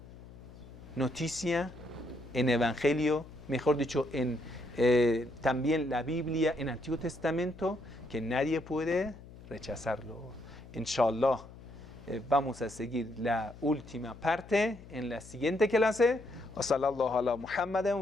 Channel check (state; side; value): noise; left; hum, 18 dB below the sound